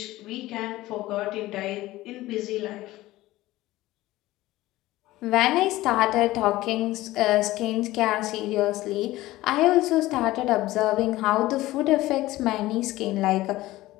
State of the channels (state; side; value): quieter; right; 17.2 dB